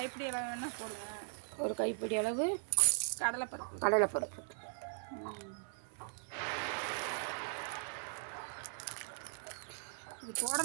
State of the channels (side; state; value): left; silent; 52 dB below the other